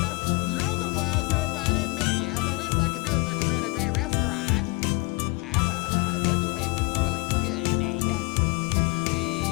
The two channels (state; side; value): quieter; right; 27.3 dB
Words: You're the ones who invited me. The least I could do is recommend a great restaurant. This place is really good, Nate.